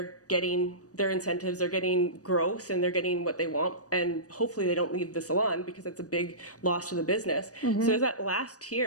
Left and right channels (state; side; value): late; right; 0.67 ms